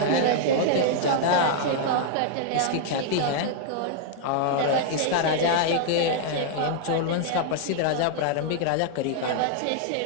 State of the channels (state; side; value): different; both; correlation -0.01